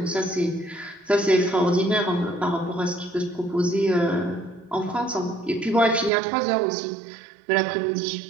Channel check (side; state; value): left; drops out; at 6.1 s